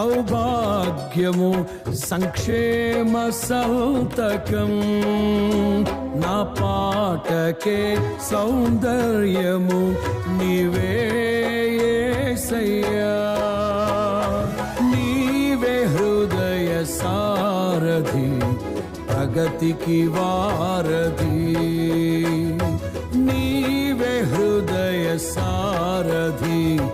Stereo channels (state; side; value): identical; both; correlation 1.00